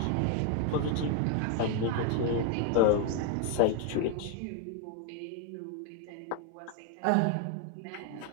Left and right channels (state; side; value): different; both; correlation 0.01